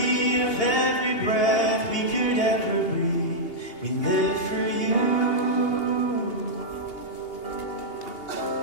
of every breath we could ever breathe. We live for You.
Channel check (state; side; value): late; right; 2.8 ms